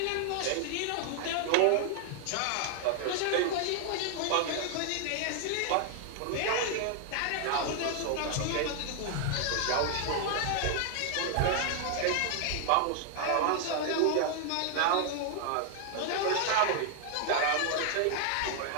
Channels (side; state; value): both; different; correlation 0.00